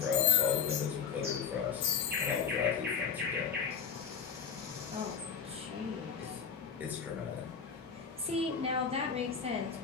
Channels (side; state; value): right; quieter; 6.8 dB